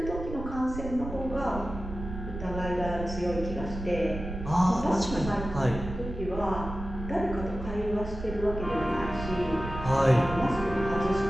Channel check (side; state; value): right; noise; rumble, 9 dB below the sound